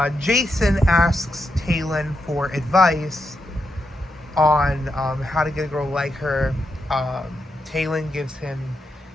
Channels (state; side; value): normal; both; correlation 0.84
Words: Jason asks Talon for advice on how to get a girl like her. Talon gives him